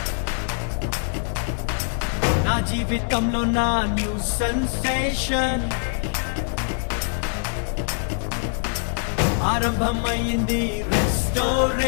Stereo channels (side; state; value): right; silent; digital silence